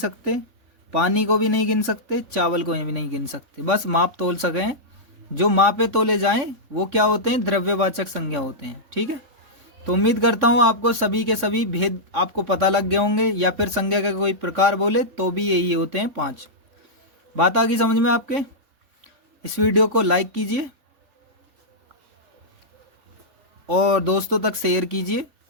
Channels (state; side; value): late; left; 3.6 ms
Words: पानी को भी नहीं गिन सकते, चावल को भी नहीं गिन सकते। बस माप तोल सकें। जो मापे तोले जाएं वो क्या होते हैं? द्रव्यवाचक संज्ञा होते हैं। ठीक है, तो उम्मीद करता हूँ आपको सभी के सभी भेद आपको पता लग गए होंगे, या फिर संज्ञा का कोई प्रकार बोले तो भी यही होते हैं 5। बात आ गई समझ में आपके? इस वीडियो को लाइक कीजिए और दोस्तों तक शेयर कीजिए,